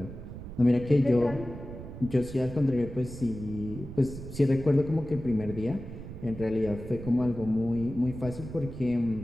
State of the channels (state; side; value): noise; right; rumble, 11 dB below the sound